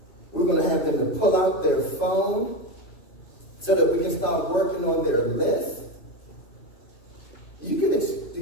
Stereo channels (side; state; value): right; late; 3.2 ms